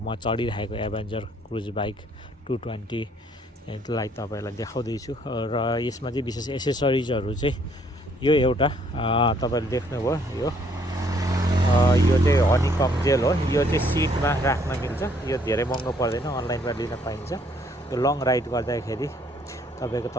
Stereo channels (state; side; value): normal; both; correlation 0.65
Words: चढिरहेको एभेन्जर क्रुज बाइक 220 लाई तपाईँलाई देखाउँदैछु। र यसमा चाहिँ विशेष एसेसरिजहरू चाहिँ यो एउटा तपाईँले देख्नुभयो यो चाहिँ हनीकम जेल हो। यो चाहिँ सिटमा राख्न मिल्छ। यो धेरै महँगो पर्दैन, अनलाइनमा लिन पाइन्छ। यो लङ राइड गर्दाखेरि तपाईँको